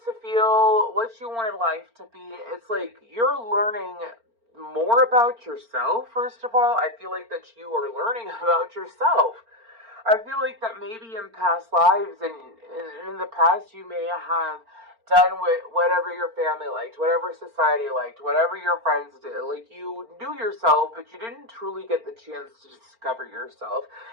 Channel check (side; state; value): left; late; 4.4 ms